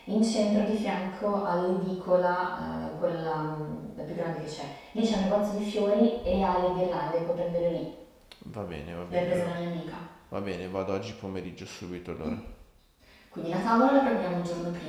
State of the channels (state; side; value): identical; both; correlation 1.00